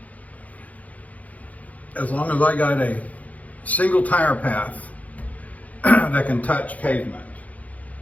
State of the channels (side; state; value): right; late; 0.072 ms